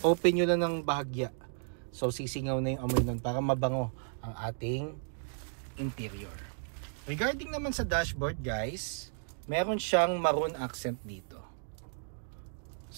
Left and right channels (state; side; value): silent; left; digital silence